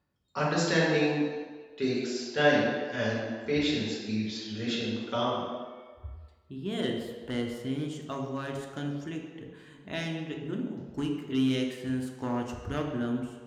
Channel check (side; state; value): both; identical; correlation 1.00